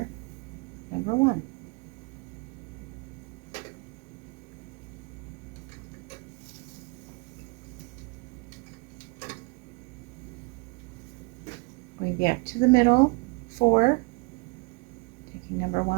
number 1. Going back to the middle, 4, taking number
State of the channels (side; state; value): left; quieter; 29.7 dB